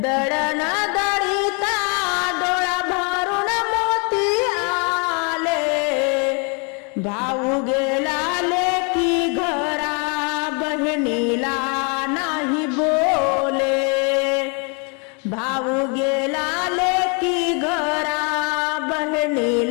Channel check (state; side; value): quieter; right; 35.2 dB